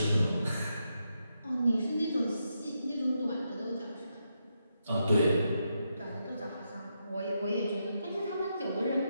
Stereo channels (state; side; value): inverted; both; correlation -0.83